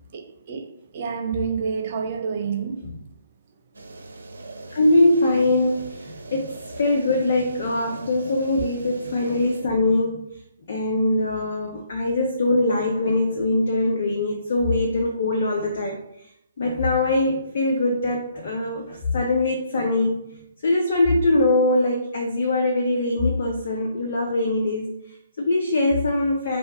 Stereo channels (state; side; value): inverted; both; correlation -0.72